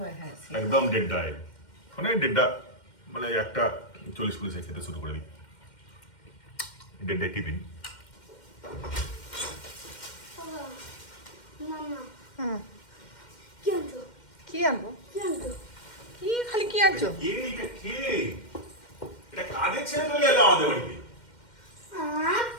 হ্যাঁ, সে- একদম দেড়টায়, মানে 1:40 খেতে শুরু করে দিই। 1:30 টিফিন। মামা হুম, কি আনছো? কি আনবো? কি আনছো? কি খালি কি আনছো? এটা কে? এটা কাদের ছেলে চলে এলো আমাদের বাড়িতে?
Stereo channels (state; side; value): late; right; 2.1 ms